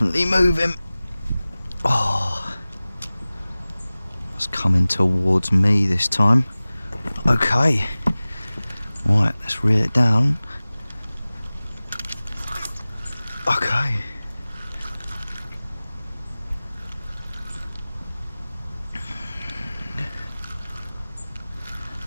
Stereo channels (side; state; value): both; inverted; correlation -0.98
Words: moving. Oh, it's coming towards me this time. Okay, right, let's reel it down. Okay.